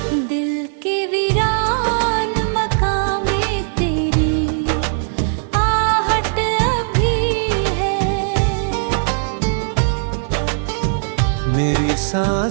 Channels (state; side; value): silent; left; digital silence